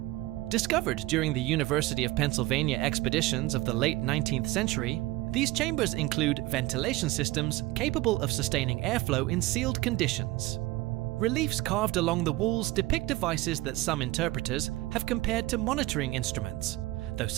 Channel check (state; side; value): quieter; left; 18.7 dB